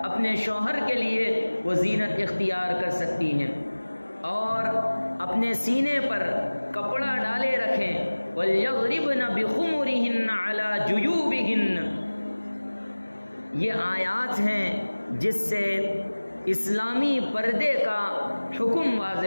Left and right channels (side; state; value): both; inverted; correlation -1.00